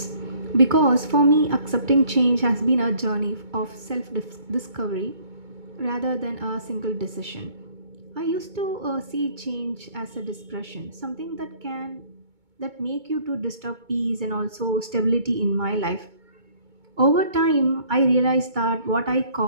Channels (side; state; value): left; late; 2.2 ms